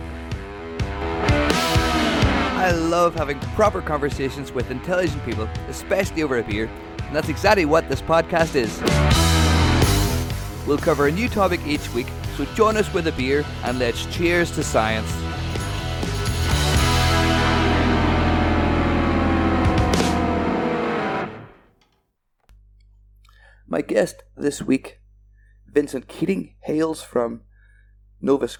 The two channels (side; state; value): both; identical; correlation 1.00